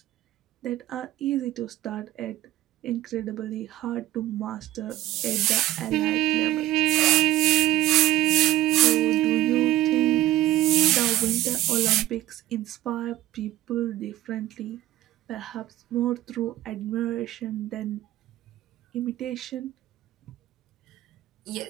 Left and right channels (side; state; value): left; quieter; 14.9 dB